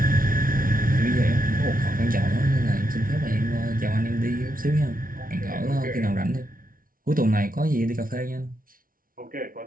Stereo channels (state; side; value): late; left; 0.41 ms